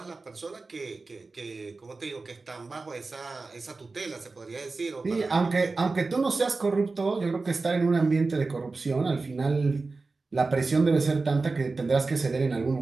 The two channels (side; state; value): left; quieter; 3.8 dB